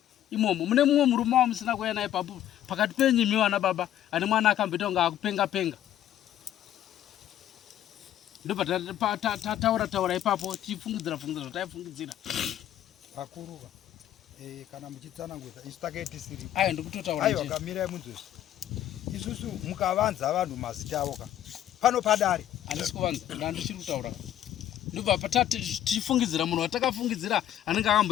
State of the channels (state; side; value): quieter; right; 11.8 dB